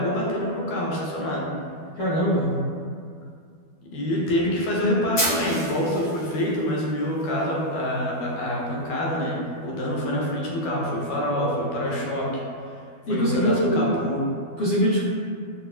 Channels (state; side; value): late; right; 12 ms